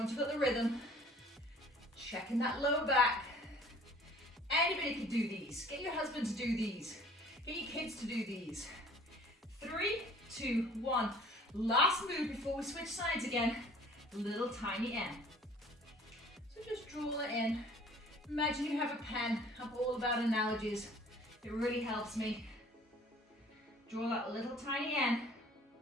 you've got the rhythm. Checking that low back. Anybody can do these. Get your husband to do these. Get your kids to do these. 3, 2, 1. Last move before we switch sides again. Little tiny N. So just draw it in. Imagine you have a pen. I'm all about analogies. It really helps me. Draw that little tiny N.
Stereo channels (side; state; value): both; normal; correlation 0.52